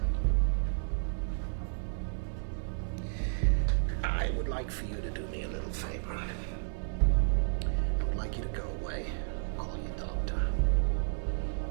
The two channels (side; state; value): left; silent; digital silence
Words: I would like for you to do me a little favor. I would like you to go away, call your doctor.